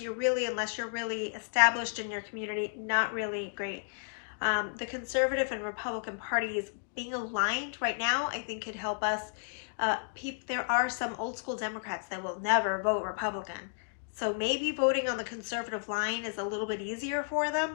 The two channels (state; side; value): silent; right; digital silence